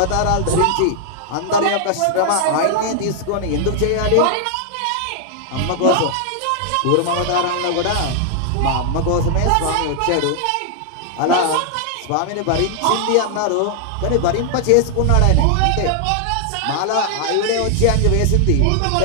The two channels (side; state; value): both; different; correlation 0.00